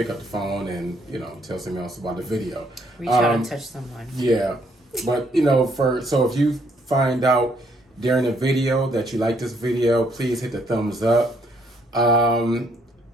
up the phone and tell someone else about the video. Reach out and touch someone. Yeah, but so if you find out during the video that you like this video, please hit the thumbs up. But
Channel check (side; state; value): both; normal; correlation 0.69